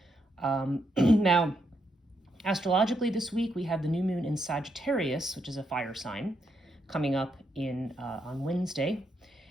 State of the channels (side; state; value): both; normal; correlation 0.79